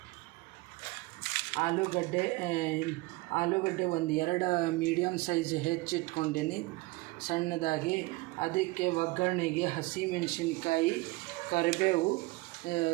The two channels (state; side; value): quieter; left; 22.3 dB